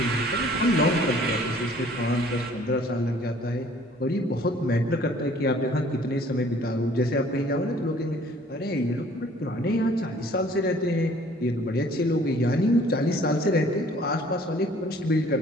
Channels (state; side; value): normal; both; correlation 0.55